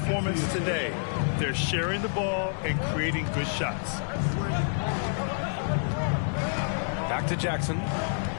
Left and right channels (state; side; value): silent; right; 59 dB below the other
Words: today. They're sharing the ball and creating good shots. Back to Jackson.